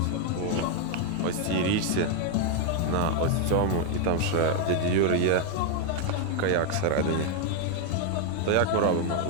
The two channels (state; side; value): different; both; correlation 0.01